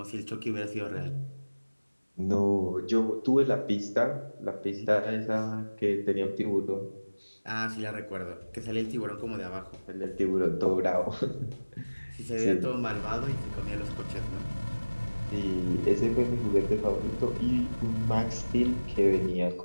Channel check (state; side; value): inverted; both; correlation -1.00